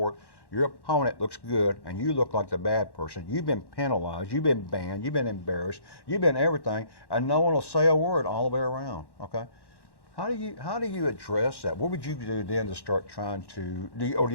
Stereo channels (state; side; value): late; right; 1.1 ms